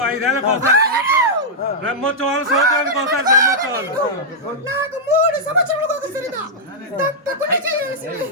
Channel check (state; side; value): normal; both; correlation -0.08